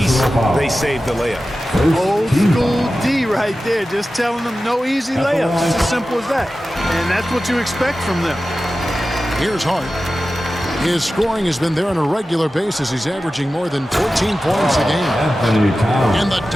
they saved the layup. Old school D right there, just telling them no easy layups. It's as simple as that. And that's what you expect from them. Here's Hart. His scoring has been there on a regular basis. He's averaging more than 14 points a game. And the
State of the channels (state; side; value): normal; both; correlation 0.94